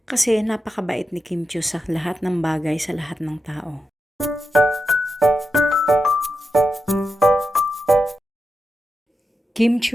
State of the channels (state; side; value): normal; both; correlation 0.89